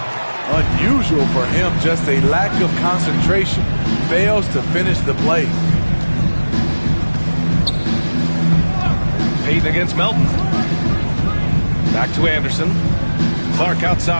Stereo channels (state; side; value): inverted; both; correlation -1.00